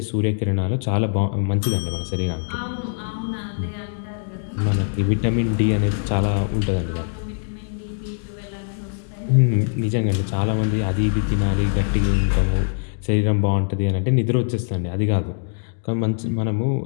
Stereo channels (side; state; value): right; silent; digital silence